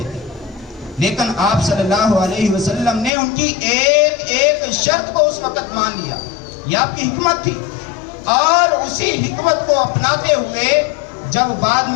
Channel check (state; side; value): drops out; right; at 3.1 s